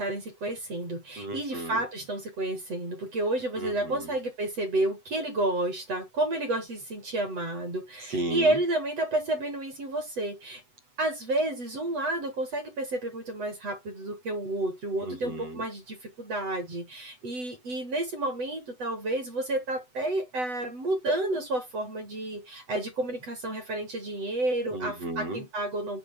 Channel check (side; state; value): left; late; 8.0 ms